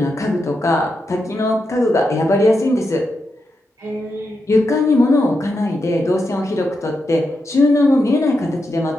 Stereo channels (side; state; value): both; normal; correlation 0.86